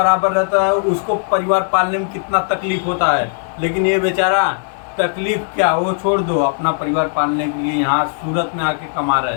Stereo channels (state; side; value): silent; right; digital silence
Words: रहता है उसको परिवार पालने में कितना तकलीफ होता है, लेकिन ये बेचारा तकलीफ क्या, वो छोड़ दो, अपना परिवार पालने के लिए यहाँ सूरत में आके कमा